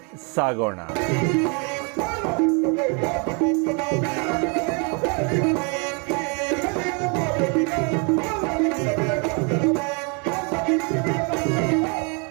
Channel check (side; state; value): left; quieter; 34.9 dB